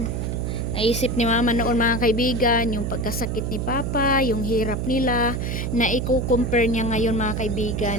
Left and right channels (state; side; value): noise; right; hum, 2 dB below the sound